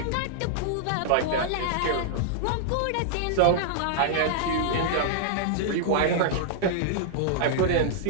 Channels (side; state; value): both; different; correlation -0.01